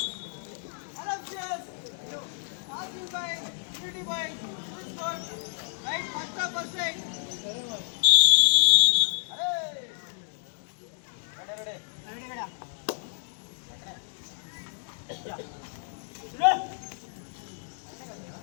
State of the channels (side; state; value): right; silent; digital silence